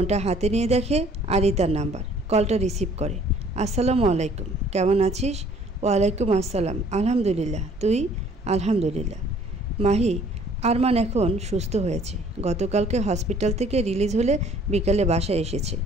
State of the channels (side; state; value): both; normal; correlation 0.57